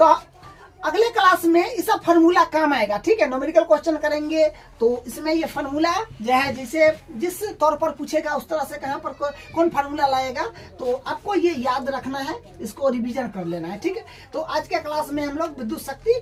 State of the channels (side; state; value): both; identical; correlation 1.00